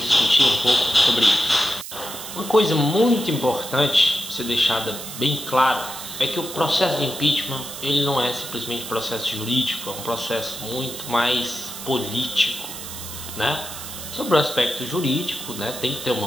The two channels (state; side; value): noise; right; hiss, 10 dB below the sound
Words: discutir um pouco sobre isso. Uma coisa muito importante ser deixada bem clara é que o processo de impeachment ele não é simplesmente processo jurídico, é um processo muito mais político, né? Sobre o aspecto jurídico, né, tem que ter